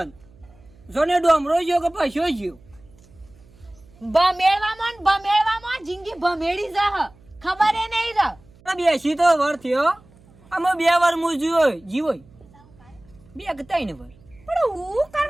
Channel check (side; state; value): right; noise; hum, 27 dB below the sound